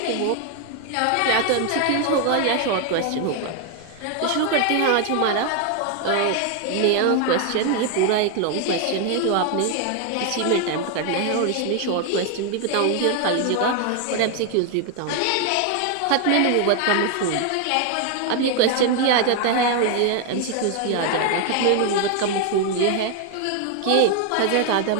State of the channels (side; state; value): both; different; correlation 0.01